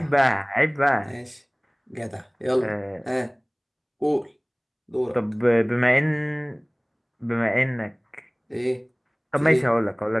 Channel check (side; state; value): both; identical; correlation 1.00